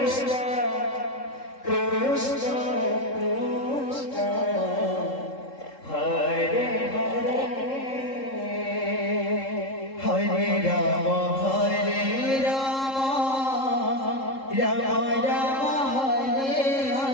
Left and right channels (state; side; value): late; right; 3.7 ms